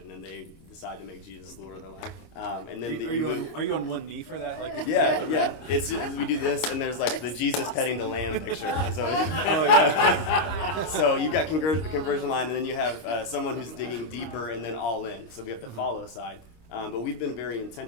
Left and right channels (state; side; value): late; right; 26 ms